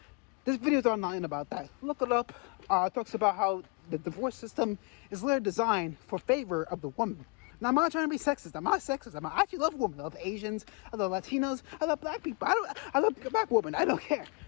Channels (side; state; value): right; quieter; 29.8 dB